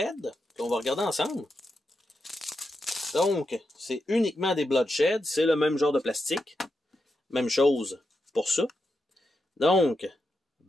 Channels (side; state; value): both; normal; correlation 0.86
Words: qu'on va regarder ensemble. Donc, c'est uniquement des Bloodshed, c'est le même genre de plastique. Même chose pour ça. Donc,